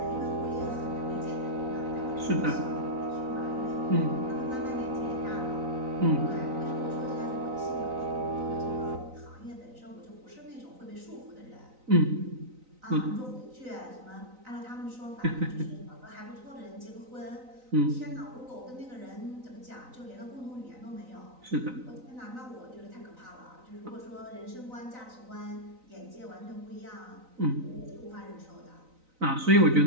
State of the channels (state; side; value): late; left; 3.9 ms